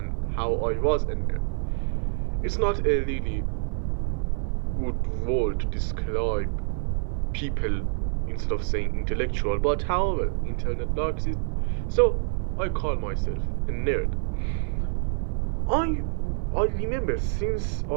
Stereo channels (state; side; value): silent; left; 60 dB below the other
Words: how I was a nerd. It's not a really good word to describe people instead of saying intellectual, but however, internet likes it, so I call myself a nerd. I I remember since